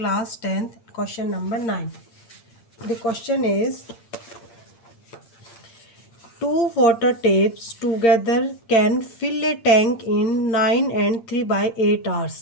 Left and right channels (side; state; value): right; late; 8.7 ms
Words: 10th question number 9. The question is two water tapes together can fill a tank in 9 and 3/8